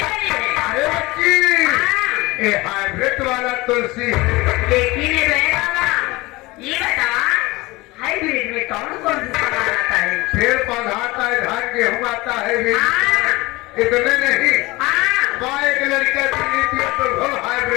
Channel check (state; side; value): quieter; right; 21.6 dB